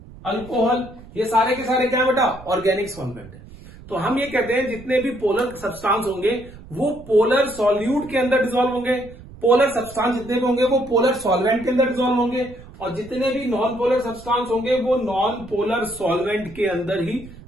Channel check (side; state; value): right; noise; rumble, 18 dB below the sound